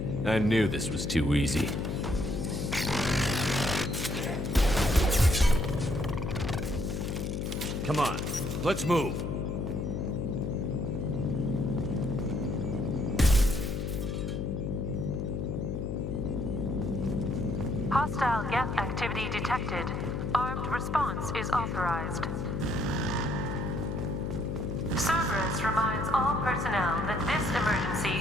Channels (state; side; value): noise; left; hum, 2 dB below the sound